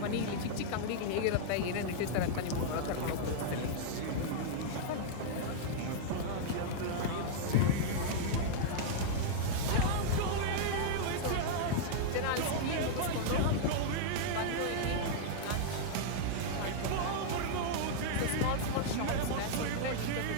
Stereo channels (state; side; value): different; both; correlation -0.02